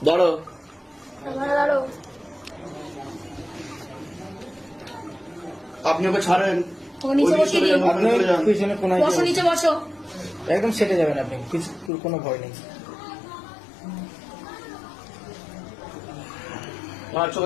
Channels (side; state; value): right; drops out; at 11.9 s